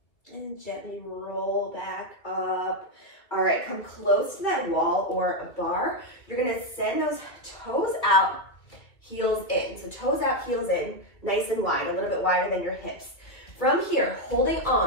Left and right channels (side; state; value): right; late; 2.2 ms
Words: And gently roll back up. All right, come close to that wall or a bar. You're gonna send those toes out, heels in. So toes out, heels in, nice and wide, a little bit wider than your hips. From here, holding